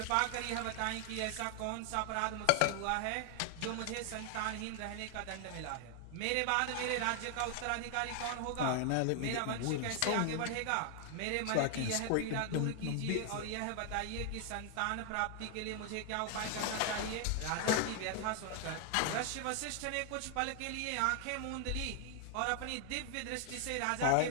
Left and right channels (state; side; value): different; both; correlation 0.00